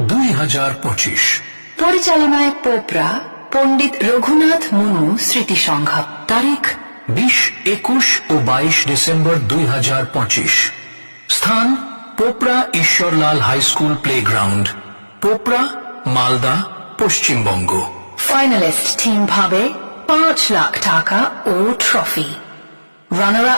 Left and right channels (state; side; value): inverted; both; correlation -1.00